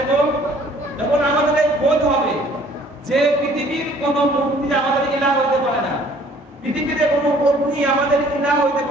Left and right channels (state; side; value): normal; both; correlation 0.56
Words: এবং আমাদের এই বোধ হবে যে পৃথিবীর কোনো মূর্তি আমাদের ইলাহ হতে পারে না, পৃথিবীতে কোনো মূর্তি আমাদের ইলাহ হতে